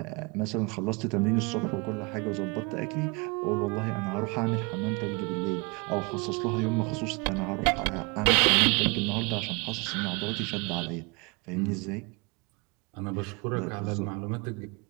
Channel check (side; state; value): left; quieter; 28.8 dB